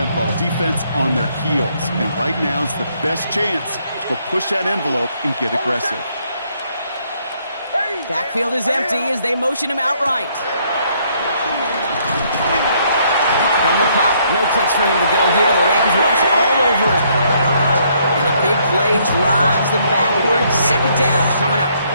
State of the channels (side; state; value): both; inverted; correlation -0.69